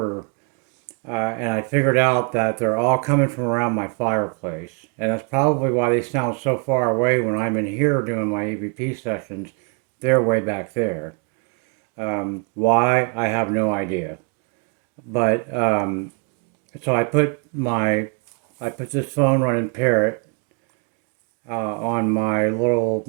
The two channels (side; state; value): left; quieter; 33.7 dB